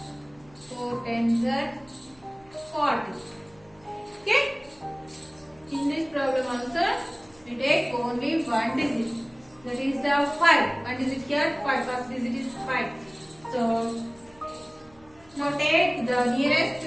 4 tens are 40. Okay? In this problem also, we take only one digit. That is the 5. One digit here, 5. First digit is 5. So, now take the nearest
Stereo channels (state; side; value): noise; right; hum, 28 dB below the sound